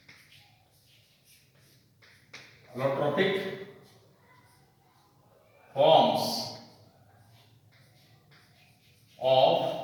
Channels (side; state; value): both; identical; correlation 1.00